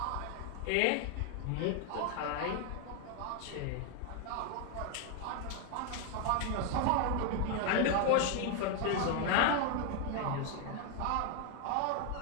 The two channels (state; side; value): different; both; correlation 0.01